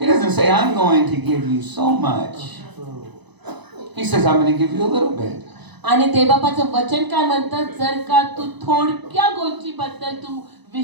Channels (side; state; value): left; late; 1.0 ms